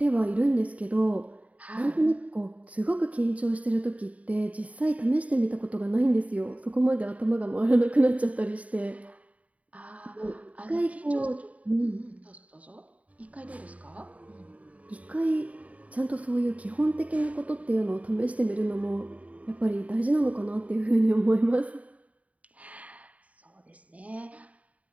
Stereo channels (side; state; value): left; late; 0.068 ms